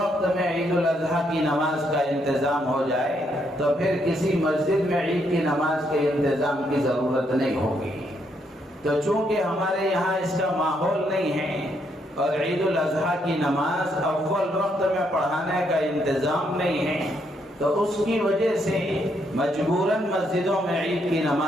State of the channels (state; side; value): normal; both; correlation 0.75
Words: میں عید الاضحیٰ کی نماز کا انتظام ہو جائے تو پھر کسی مسجد میں عید کی نماز کے انتظام کی ضرورت نہیں ہوگی۔ تو چونکہ ہمارے یہاں اس کا ماحول نہیں ہے اور عید الاضحیٰ کی نماز اول وقت میں پڑھانے کا انتظام نہیں ہے، تو اس کی وجہ سے مجبوراً مسجدوں میں عید کی